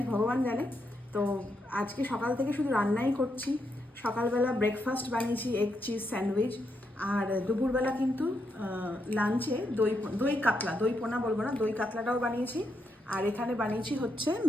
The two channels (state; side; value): normal; both; correlation 0.81